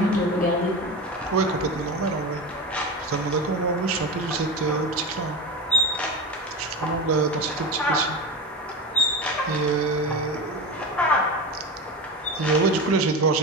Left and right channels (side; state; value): both; normal; correlation 0.24